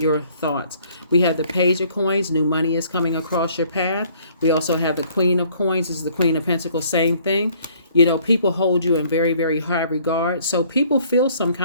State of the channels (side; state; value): both; inverted; correlation -0.60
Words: thoughts. We have the page of coins. New money is coming across your path. We also have the queen of coins. This is the queen of pentacles. Same thing. You know, people hold you in very, very high regard. So people feel some